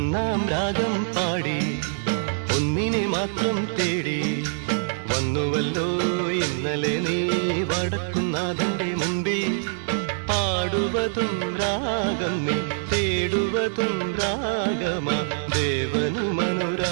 ഒന്നാം രാഗം പാടി ഒന്നിനെ മാത്രം തേടി വന്നുവല്ലോ ഇന്നലെ നീ വടക്കുന്നാഥന്റെ മുമ്പിൽ. പാടുവതും രാഗം നീ തേടുവതും രാഗമാ ദേവനു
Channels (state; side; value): silent; left; 62 dB below the other